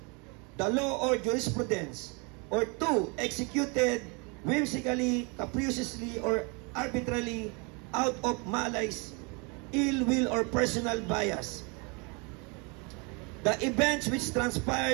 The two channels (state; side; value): quieter; left; 31.5 dB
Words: the law or jurisprudence, or two, executed whimsically, capriciously, or arbitrarily out of malice, ill will, or personal bias. The events which